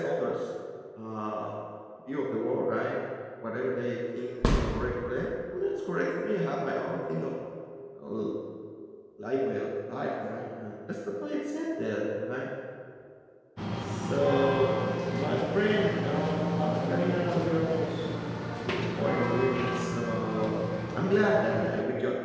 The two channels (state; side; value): identical; both; correlation 1.00